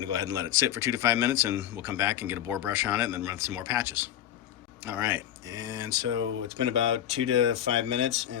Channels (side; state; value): right; quieter; 11.1 dB